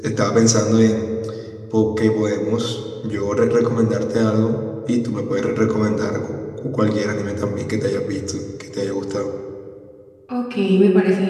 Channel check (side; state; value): both; identical; correlation 1.00